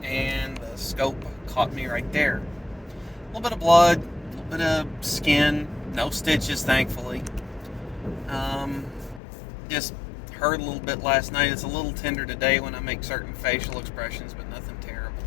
and the scope caught me right there. A little bit of blood, a little bit of skin, no stitches, thankfully. Just hurt a little bit last night. It's a little tender today when I make certain facial expressions, but nothing terrible.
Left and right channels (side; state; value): right; drops out; at 9.2 s